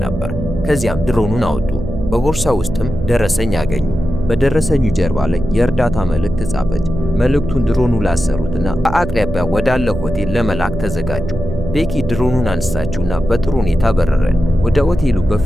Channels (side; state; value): right; noise; hum, 7 dB below the sound